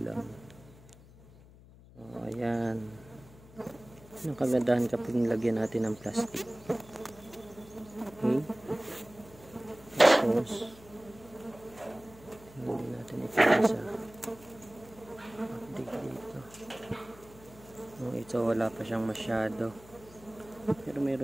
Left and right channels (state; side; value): noise; left; hum, 22 dB below the sound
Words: lang. So, ayan. Ang kagandahan kapag nilagyan natin ng plastic. Okay. Tapos, hindi natin ito isa. Update dito. Ito wala pa siyang masyado. Pero